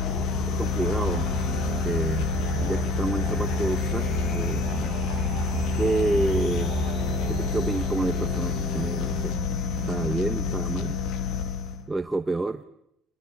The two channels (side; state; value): both; normal; correlation 0.46